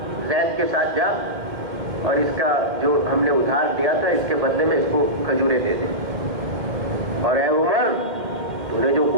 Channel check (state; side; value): late; left; 2.1 ms